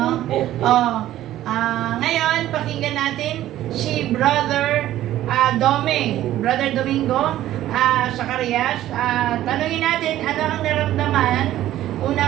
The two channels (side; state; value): left; quieter; 13.6 dB